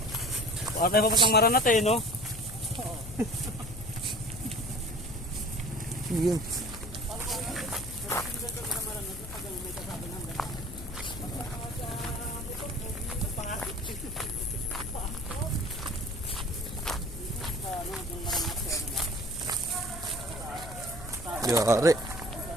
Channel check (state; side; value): noise; left; hum, 13 dB below the sound